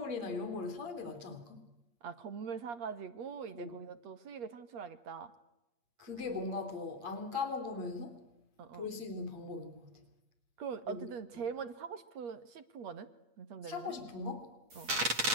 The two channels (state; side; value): late; left; 8.5 ms